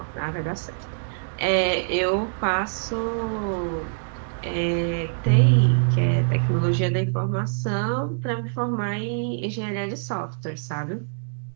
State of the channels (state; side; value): silent; left; digital silence